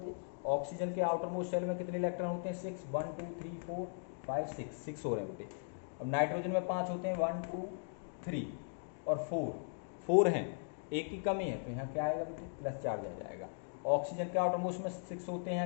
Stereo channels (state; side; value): silent; right; digital silence